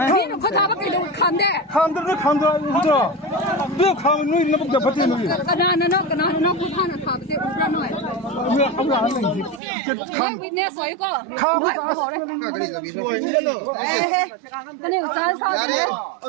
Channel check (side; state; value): left; drops out; at 9.6 s